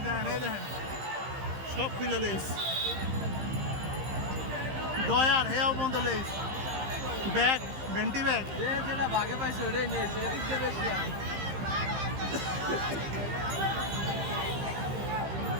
সব খুলে লেস ডয়ার হেয়াও বন্ধ লেস ব্যাগ ভেন্টি ব্যাগ যেটা ভাগে পাইছে ওটাই নিয়েছে এদিক দিয়ে বেশি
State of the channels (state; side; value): late; left; 15 ms